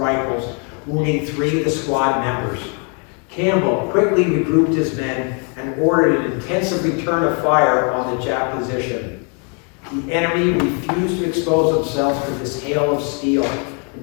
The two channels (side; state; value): right; quieter; 37.4 dB